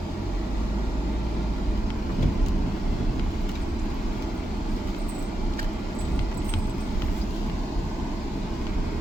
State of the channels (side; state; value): both; normal; correlation 0.87